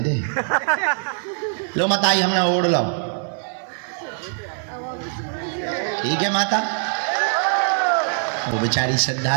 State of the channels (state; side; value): silent; left; digital silence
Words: लो मताई, हमने ओढ़ लो, ठीक है माता। वो बेचारी श्रद्धा